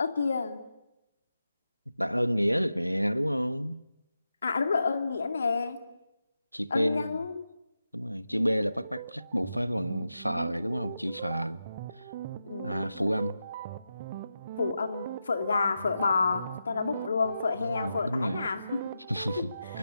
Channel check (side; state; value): both; inverted; correlation -0.89